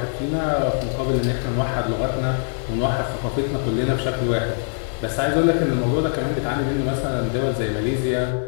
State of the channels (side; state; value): right; silent; digital silence